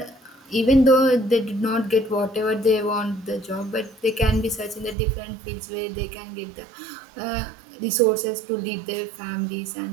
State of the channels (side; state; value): left; drops out; at 5.0 s